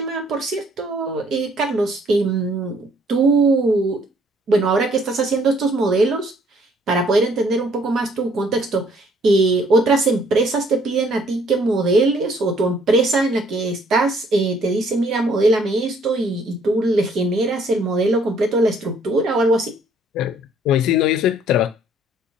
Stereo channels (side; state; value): both; normal; correlation 0.62